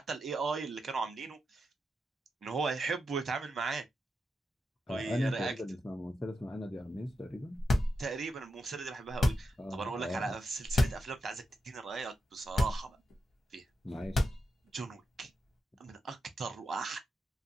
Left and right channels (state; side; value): normal; both; correlation 0.86